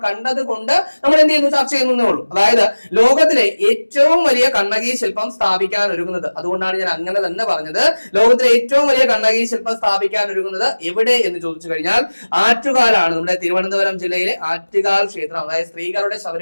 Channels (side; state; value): both; inverted; correlation -1.00